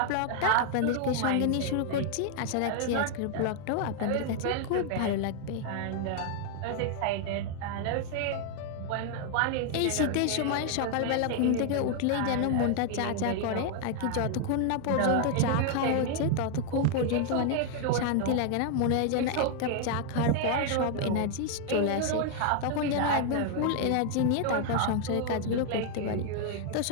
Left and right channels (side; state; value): both; different; correlation 0.00